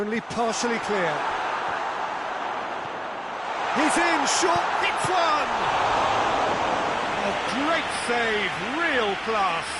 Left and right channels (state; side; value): identical; both; correlation 1.00